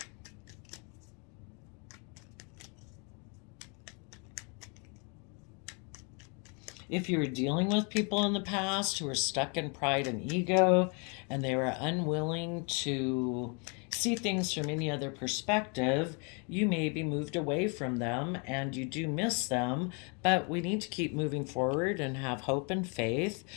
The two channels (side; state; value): right; quieter; 35.0 dB